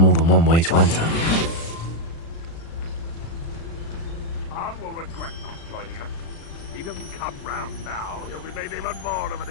than one way to enter. Khan will regret not joining us. If he doesn't come round now, he'll be made even more of an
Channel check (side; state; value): right; late; 36 ms